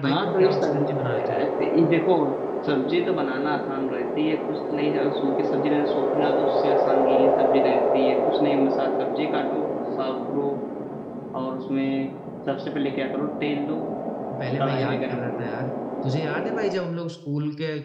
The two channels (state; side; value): identical; both; correlation 1.00